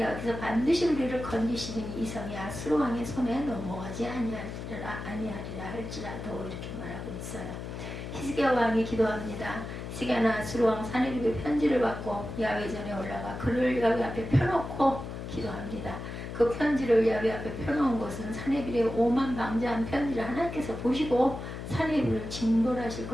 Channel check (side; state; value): left; noise; hum, 8 dB below the sound